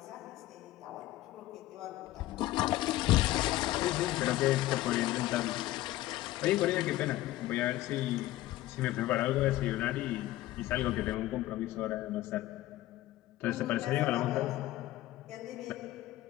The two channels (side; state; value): right; quieter; 16.1 dB